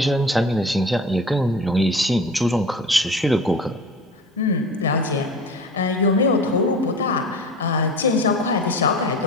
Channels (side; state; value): both; normal; correlation 0.36